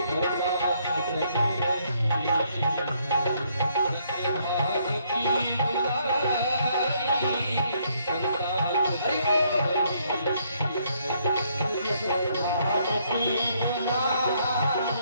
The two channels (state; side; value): inverted; both; correlation -0.70